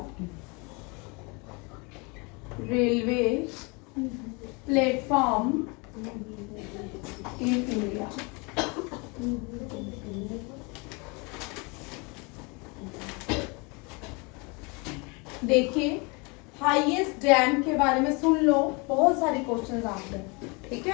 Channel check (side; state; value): right; quieter; 29.8 dB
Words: railway platform in India. देखिए हाईएस्ट डैम के बारे में सुन लो, बहुत सारे क्वेश्चंस आते हैं, ठीक